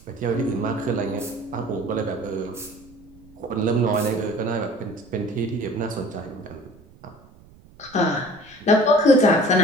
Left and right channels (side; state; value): right; noise; rumble, 25 dB below the sound